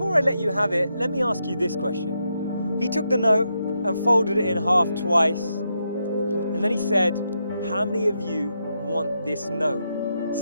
I let you have it, let me ask you this question. He took the note and folded it in half twice. And then he said, how many of you want this note?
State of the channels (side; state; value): both; inverted; correlation -0.83